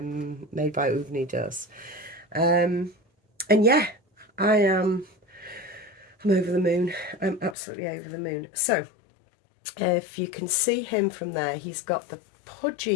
by Uvni does. And yeah, I'm over the moon. I'm absolutely over the moon. So if you can see him from there, he's got the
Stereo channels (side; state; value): right; drops out; at 7.6 s